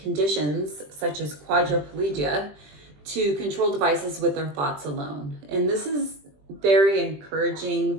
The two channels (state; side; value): late; left; 20 ms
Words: such as quadriplegia to control devices with their thoughts alone. And this is very